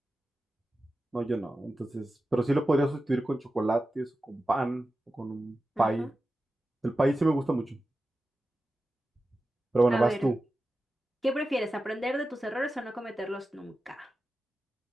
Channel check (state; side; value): normal; both; correlation 0.93